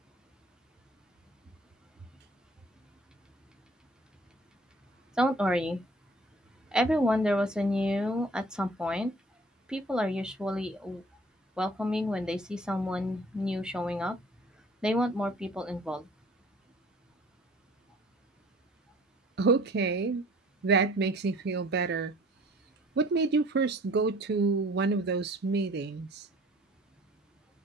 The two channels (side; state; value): both; normal; correlation 0.52